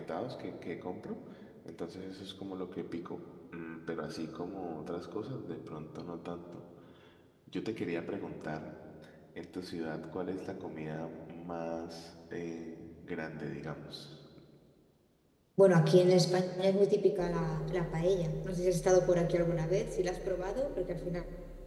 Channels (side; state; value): both; identical; correlation 1.00